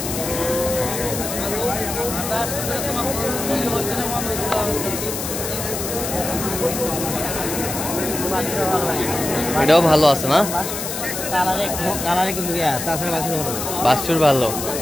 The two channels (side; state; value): left; noise; hiss, 5 dB below the sound